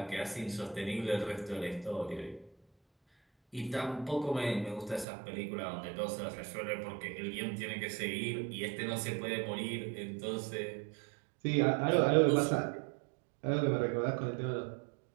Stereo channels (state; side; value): drops out; left; at 5.1 s